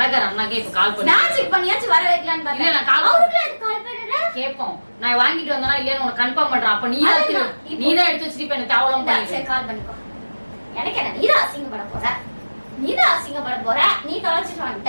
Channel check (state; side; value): inverted; both; correlation -1.00